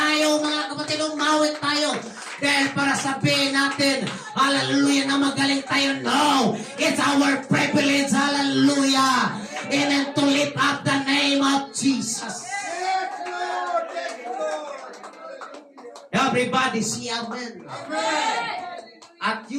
mga kapatid, umawit tayo. Dahil para sabihin natin, hallelujah, na magaling tayo. No! It's our privilege, hallelujah! Amen, to lift up the name of Jesus. Yes, Lord. Yes, Lord. Everybody see amen. Amen. At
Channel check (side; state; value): both; identical; correlation 1.00